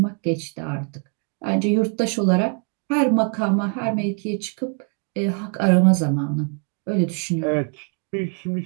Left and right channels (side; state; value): left; quieter; 35.9 dB